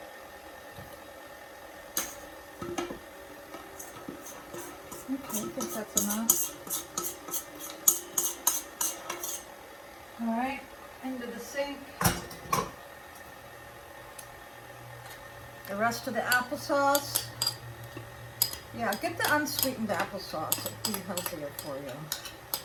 Okay, I think that's enough. All right, into the sink. The rest of the applesauce. Yeah, get the unsweetened applesauce. It'll be healthier for you.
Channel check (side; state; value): both; identical; correlation 1.00